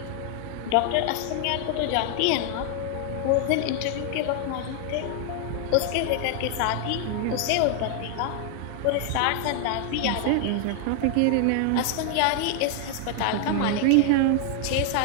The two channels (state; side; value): different; both; correlation 0.00